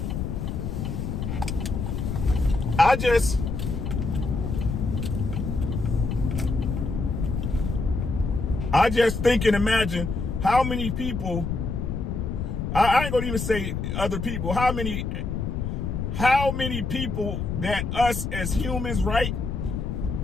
I just think and imagine how many people, I ain't gonna even say other people, how many people that us as humans, right,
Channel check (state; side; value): noise; left; rumble, 3 dB below the sound